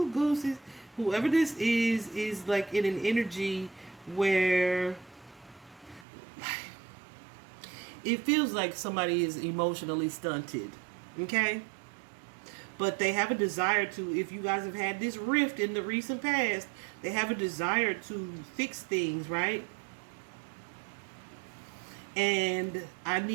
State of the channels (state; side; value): drops out; left; at 6.1 s